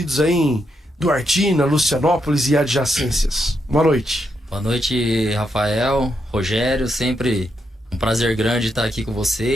aí em Duartina, Lucianópolis e adjacências. Boa noite. Boa noite, Rafael, Rogério, sempre um prazer grande estar aqui com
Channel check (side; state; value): both; normal; correlation 0.81